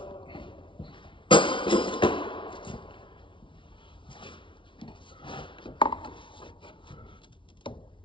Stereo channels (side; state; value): right; late; 0.24 ms